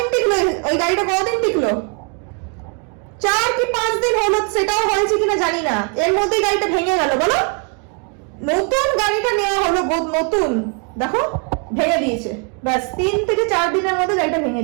টিকলো ওই গাড়িটা, কদিন টিকলো? 4 কি 5 দিন হলো, সেটাও হয়েছে কিনা জানি না, এর মধ্যেই গাড়িটা ভেঙে গেল। বলো, নতুন গাড়িটা নেওয়া হলো, নতুন, দেখো ভেঙে দিয়েছে। ব্যাস 3 থেকে 4 দিনের মধ্যে গাড়িটা ভেঙে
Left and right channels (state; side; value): quieter; left; 38.3 dB